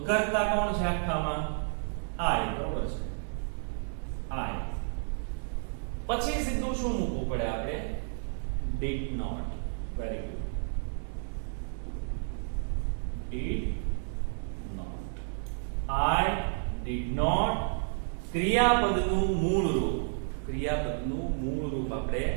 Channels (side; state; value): left; silent; digital silence